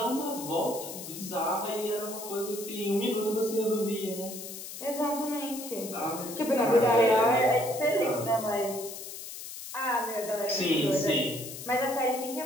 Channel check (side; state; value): left; noise; hiss, 10 dB below the sound